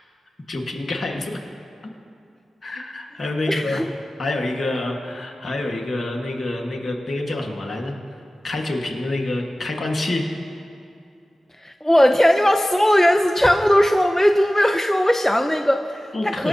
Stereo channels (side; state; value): both; normal; correlation 0.97